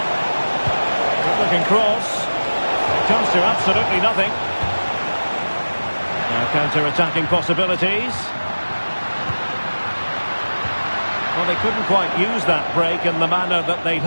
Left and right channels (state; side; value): inverted; both; correlation -1.00